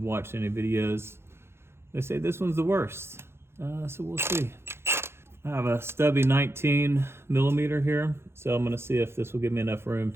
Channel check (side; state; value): left; late; 0.12 ms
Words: any videos, they say this one's the worst. So we'll see. I have a stubby 19 millimeter here, so I'm gonna see if this will give me enough room